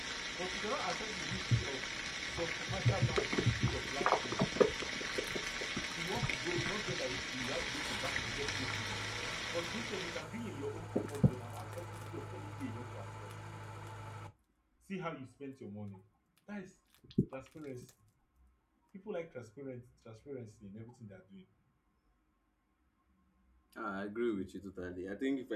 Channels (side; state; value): both; identical; correlation 1.00